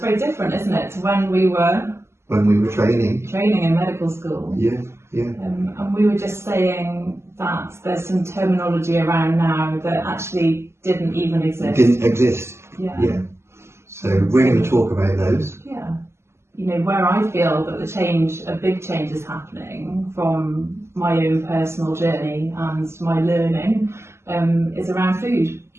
different, isn't it, to when we were training in medical school. And we were just saying that there's some terminology around now that actually didn't even exist. So we're going to talk about those. Where I feel that a big change is happening from my own personal journey and my learning is around food.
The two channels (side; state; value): left; late; 0.13 ms